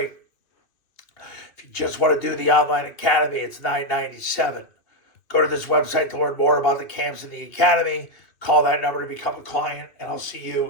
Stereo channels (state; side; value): late; right; 2.6 ms